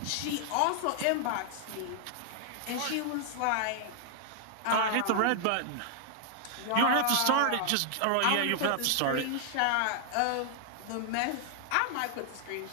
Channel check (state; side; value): different; both; correlation 0.00